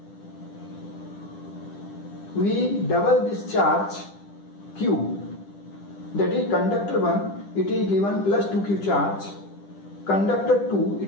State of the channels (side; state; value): right; late; 10 ms